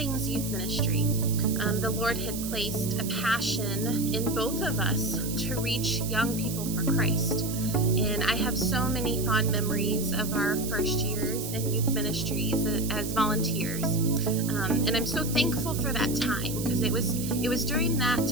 youth ministry. The Lord had placed a passion in both of us to reach young people for Christ. And I have so many fond memories of our first years in youth ministries as volunteers. And I'm so thankful for that time, because it was during that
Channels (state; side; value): noise; right; hiss, 8 dB below the sound